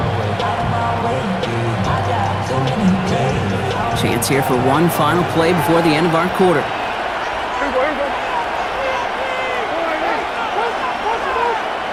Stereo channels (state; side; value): identical; both; correlation 1.00